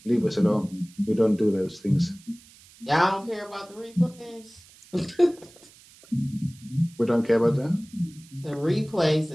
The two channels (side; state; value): right; noise; hiss, 24 dB below the sound